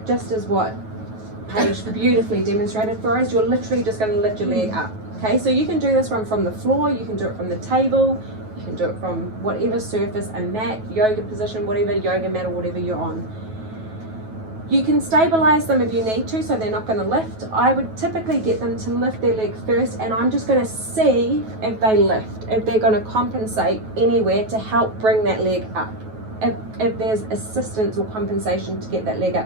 just as what Paige beautifully demonstrated for us, you're literally just going to lift your leg up. Okay, so you can do this one from the floor, you can do it from the table, you can do it from whatever surface, a mat, yoga position, whatever yoga mat or whatever you're on. You can stabilize them if you need to, so they're not going to lift. I would typically get them to lift their leg first, and I'm just going to see if they lift, if they're going to compensate anywhere to help bring that leg up. If there's assistance or compensation to get that leg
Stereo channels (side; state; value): left; late; 9.2 ms